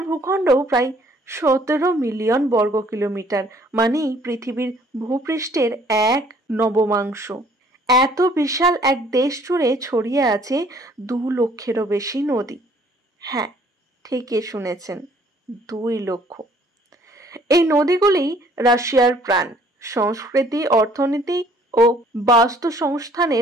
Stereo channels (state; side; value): normal; both; correlation 0.59